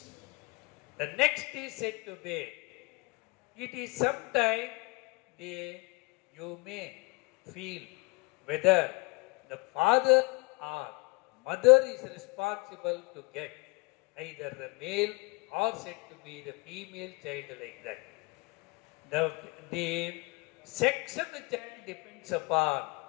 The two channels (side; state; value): right; quieter; 27.6 dB